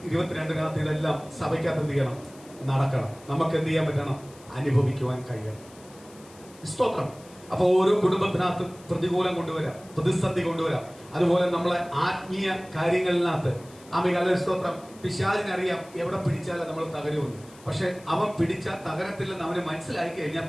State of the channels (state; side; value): noise; left; hiss, 24 dB below the sound